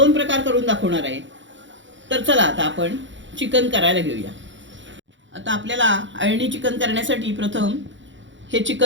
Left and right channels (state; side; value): late; left; 0.54 ms